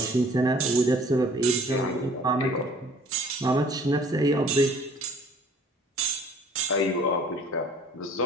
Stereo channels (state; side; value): normal; both; correlation 0.53